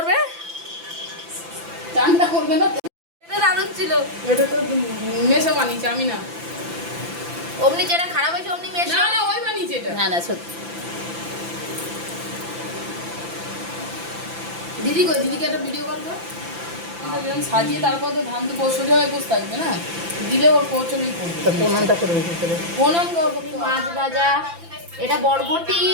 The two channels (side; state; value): left; late; 5.9 ms